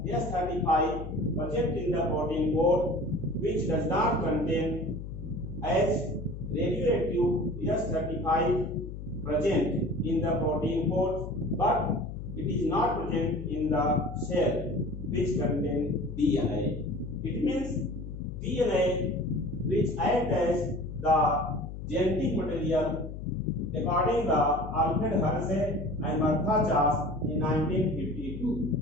S35 present in the protein coat, which does not contain as radioactive S35 present in the protein coat, but it is not present in the cell which contain DNA. It means DNA which act as the genetic material according to Alfred Hershey and Martha Chase in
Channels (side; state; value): left; noise; hum, 9 dB below the sound